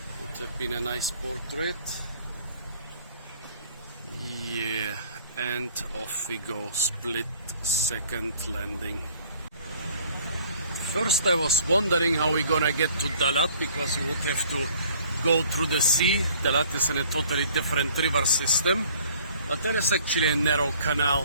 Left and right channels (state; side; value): inverted; both; correlation -0.54